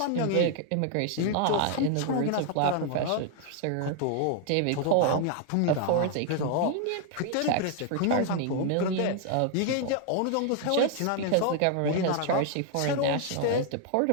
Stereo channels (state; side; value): different; both; correlation 0.00